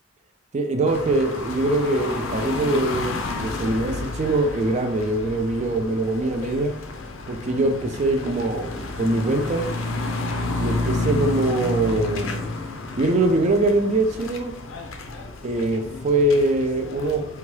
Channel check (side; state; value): both; normal; correlation 0.42